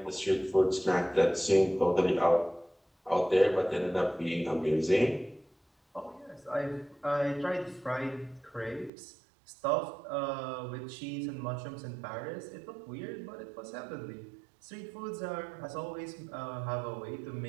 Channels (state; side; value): drops out; left; at 8.9 s